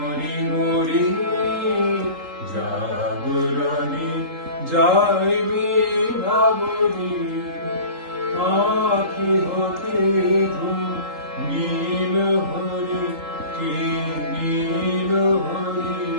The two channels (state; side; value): late; left; 3.8 ms